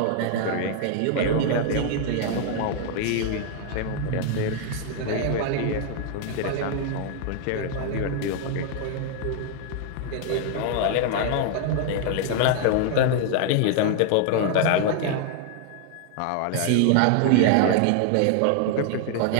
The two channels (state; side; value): different; both; correlation 0.00